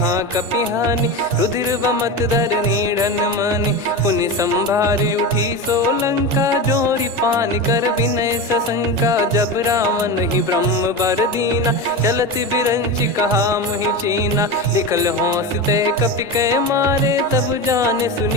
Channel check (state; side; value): normal; both; correlation 0.22